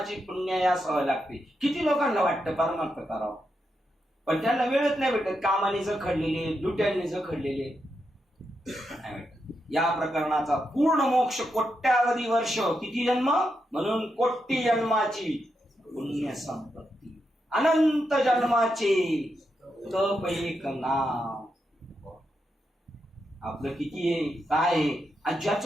पुण्य असावं लागते. किती लोकांना वाटतं परमार्थ करावं, पण त्यांना वेळच नाही भेटत, कामाने जखडलेले, दुट्यांनी जखडलेले. या प्रकरणाचा पूर्ण मोक्ष कोट्यावधी वर्ष, किती जन्म, म्हणून कोटी जन्माची पुण्य संपत्ती, अनंत जन्माचे तप एक नाम. आपलं किती आहे काय आहे, आणि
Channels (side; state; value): both; normal; correlation 0.85